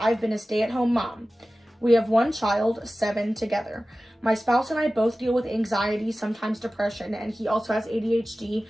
been a stay-at-home mom. We have 1 child, 7 together. My spouse and I both deal with anxiety, sometimes depression, and he also has ADHD,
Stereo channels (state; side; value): normal; both; correlation 0.96